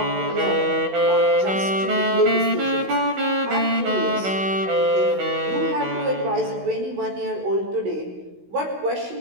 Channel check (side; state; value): left; late; 16 ms